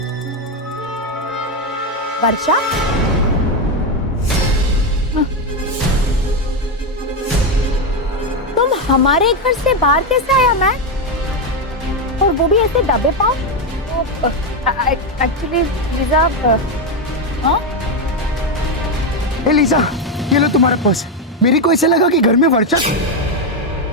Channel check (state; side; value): normal; both; correlation 0.08